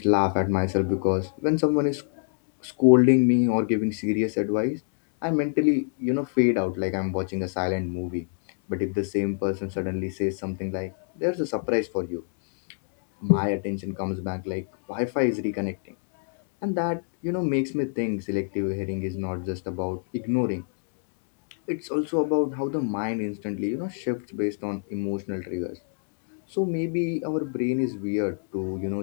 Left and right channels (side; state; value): right; silent; digital silence